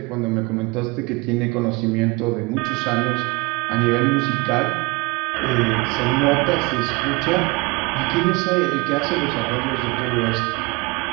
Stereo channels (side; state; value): left; quieter; 25.4 dB